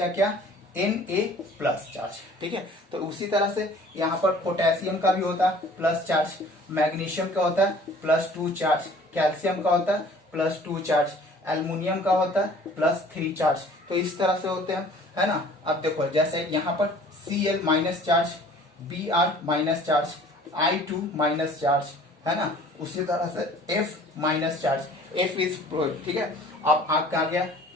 क्या, Na+ चार्ज, ठीक है। तो उसी तरह से यहाँ पर पोटेशियम का भी होता है प्लस चार्ज, मैग्नीशियम का होता है +2 चार्ज, कैल्शियम का होता है +2 चार्ज, एल्युमिनियम का होता है +3 चार्ज। तो इस तरह से होते हैं, है ना। अब देखो, जैसे यहाँ पर Cl- charge, Br- charge, I2- charge, है ना। उसी तरह से F- चार्ज, F इज, ठीक है। अब आपका आ गया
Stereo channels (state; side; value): normal; both; correlation 0.50